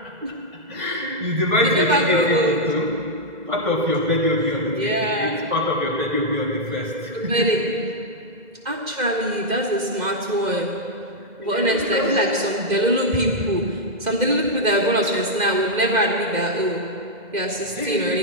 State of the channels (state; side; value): late; left; 2.0 ms